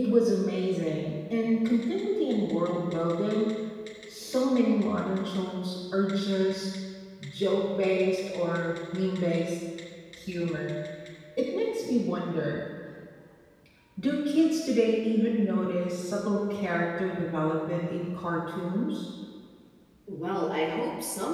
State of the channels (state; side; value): identical; both; correlation 1.00